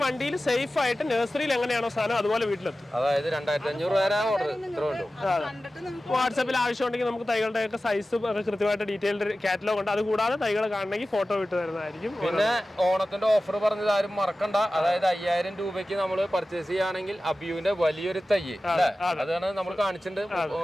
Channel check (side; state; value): both; normal; correlation 0.95